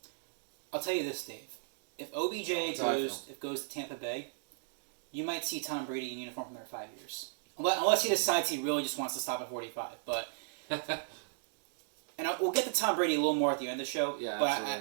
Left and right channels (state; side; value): silent; left; digital silence